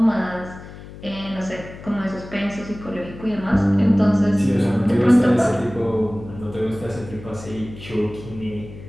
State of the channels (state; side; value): noise; left; hum, 15 dB below the sound